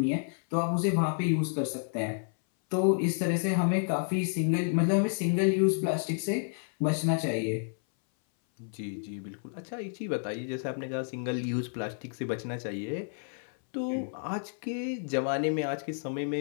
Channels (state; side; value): silent; right; 58 dB below the other